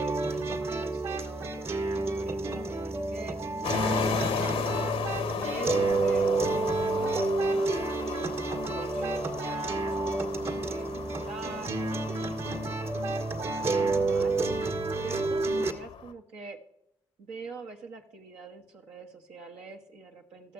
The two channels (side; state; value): both; normal; correlation 0.72